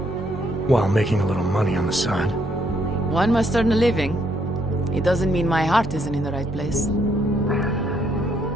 While making a little money on the side. One must earn a living. It doesn't mean my heart isn't in the right place.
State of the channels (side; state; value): both; normal; correlation 0.72